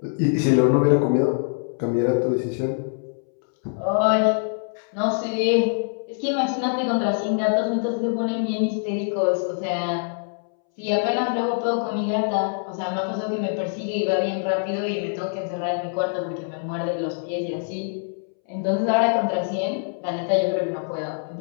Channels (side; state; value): right; silent; 63 dB below the other